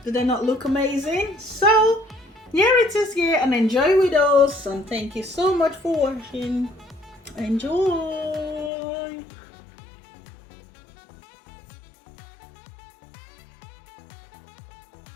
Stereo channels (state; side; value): drops out; right; at 8.7 s